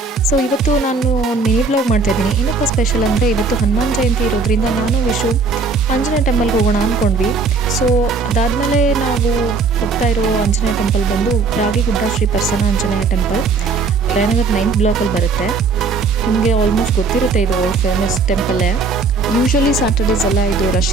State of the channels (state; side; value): quieter; left; 4.3 dB